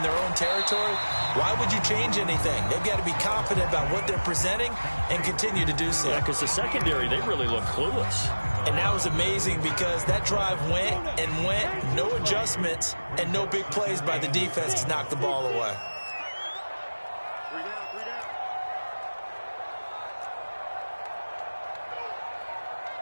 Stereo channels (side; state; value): both; inverted; correlation -1.00